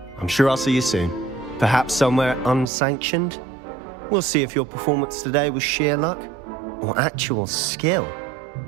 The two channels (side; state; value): left; drops out; at 2.7 s